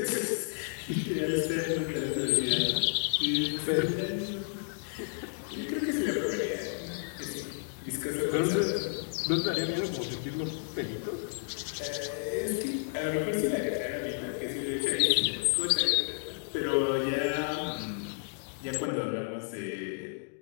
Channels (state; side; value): silent; right; digital silence